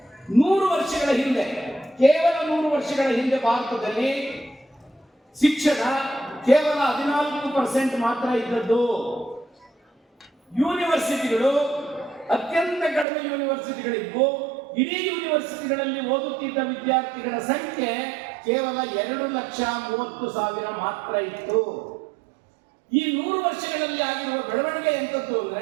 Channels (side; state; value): left; drops out; at 13.1 s